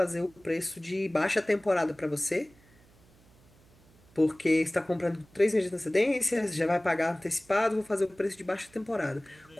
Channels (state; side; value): noise; right; hum, 29 dB below the sound